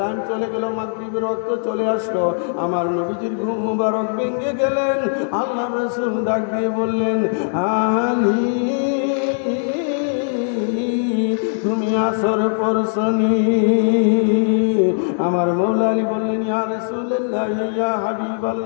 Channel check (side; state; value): right; silent; digital silence